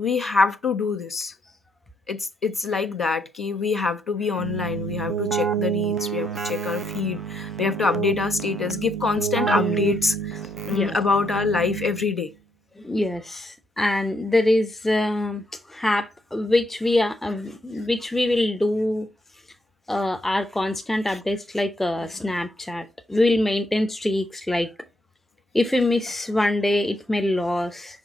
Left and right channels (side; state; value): both; normal; correlation 0.76